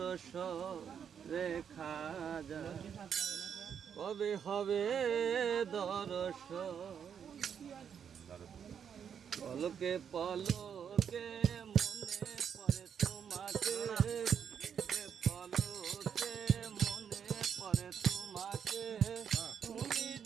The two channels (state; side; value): quieter; left; 7.8 dB